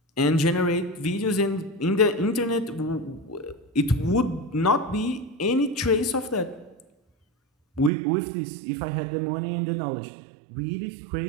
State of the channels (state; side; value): drops out; left; at 7.9 s